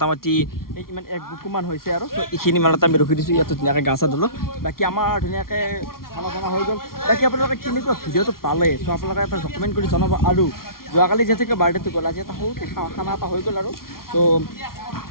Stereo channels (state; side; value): late; right; 0.93 ms